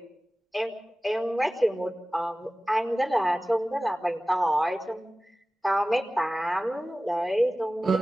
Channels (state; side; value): normal; both; correlation 0.97